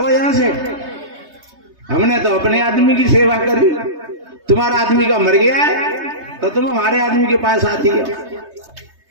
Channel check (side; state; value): left; late; 3.2 ms